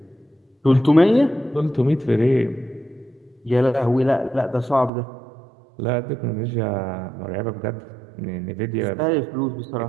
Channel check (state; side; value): drops out; left; at 4.9 s